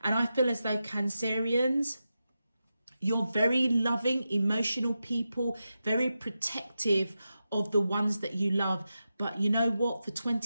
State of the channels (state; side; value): inverted; both; correlation -0.90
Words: And I feel as though Cancerians, you're very loving, emotional people, very protective of the ones that you love. But you know what? For